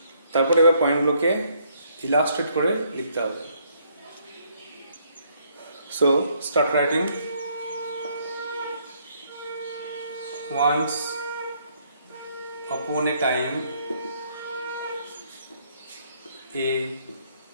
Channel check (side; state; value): both; inverted; correlation -0.68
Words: তারপরে এবার পয়েন্টগুলোকে ইলাস্ট্রেট করে লিখতে হবে। So start writing. Once upon a time, a